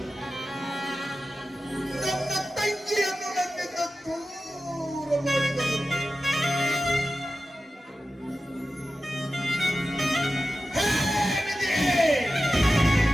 ನನ್ನ ತಂಗಿಯನ್ನು ನನ್ನಿಂದ ದೂರ ಮಾಡಿದರು.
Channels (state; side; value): normal; both; correlation 0.93